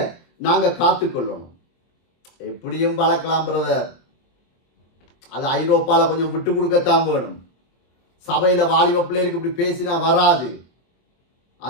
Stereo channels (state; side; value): late; right; 23 ms